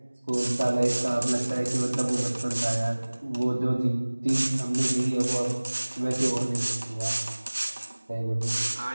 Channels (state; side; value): inverted; both; correlation -1.00